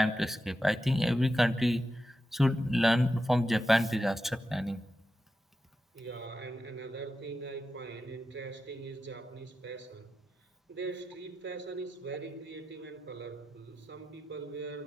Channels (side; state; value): both; normal; correlation 0.89